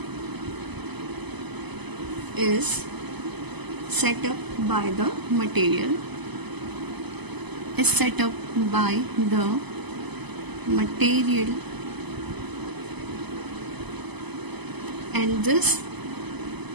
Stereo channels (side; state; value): left; late; 0.99 ms